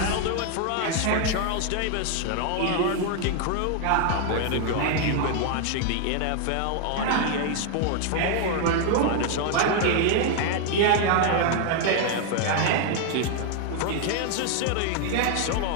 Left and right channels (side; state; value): both; different; correlation 0.00